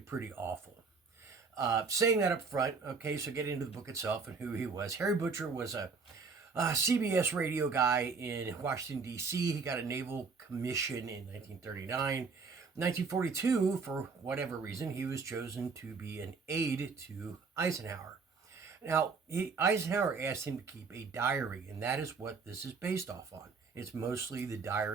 awful. Saying that up front, okay, so get into the book itself and who he was. Harry Butcher was a CBS radio guy in Washington, D.C. He got a naval commission in 1939. 1942, for whatever reason, he was chosen to be an aide to Eisenhower. Now, Eisenhower asked him to keep a diary, and that is what this is based off on. It's mostly the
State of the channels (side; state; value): left; quieter; 4.8 dB